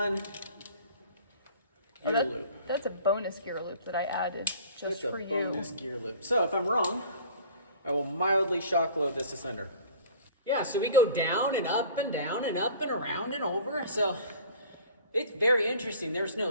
gear loop. That's a bonus gear loop that I added just for you. That's a bonus gear loop. So if I'm wrong, I will mildly shock load this asunder. Yeah, so we go down and up and down and up and around and over. So it's very interesting. There's no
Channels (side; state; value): both; inverted; correlation -0.45